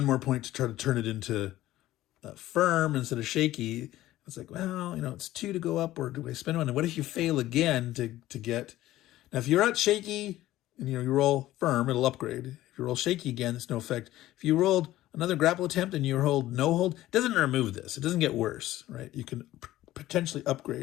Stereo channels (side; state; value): right; quieter; 15.2 dB